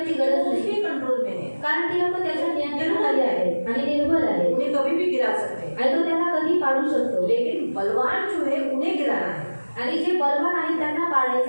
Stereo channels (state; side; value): inverted; both; correlation -1.00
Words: गरज वो नाही? उसके कंट्रोल में है. कारण ती लोक त्याच्या नियंत्रणाखाली आहेत आणि निर्बल आहेत उन्हें कभी भी गिरा सकते हैं. आणि तो त्यांना कधी पाडू शकतो. लेकिन बलवान जो है उन्हें गिराना है. आणि जे बलवान आहेत त्यांना